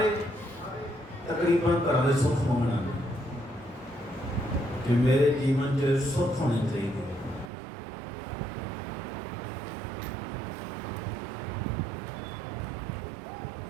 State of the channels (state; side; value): drops out; left; at 7.5 s